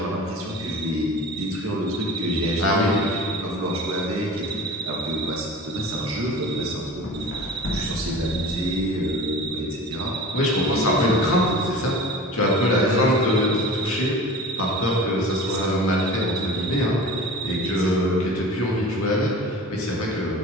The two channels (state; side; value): normal; both; correlation 0.38